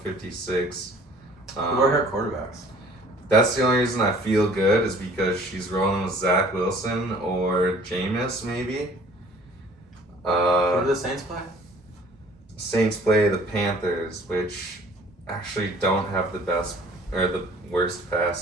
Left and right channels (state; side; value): normal; both; correlation 0.53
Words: Who are her quarterbacks? That's the only reason I feel good is because she's rolling with Zach Wilson or Jameis maybe. Who do the Saints play? Saints play the Panthers, which actually don't have the best or the worst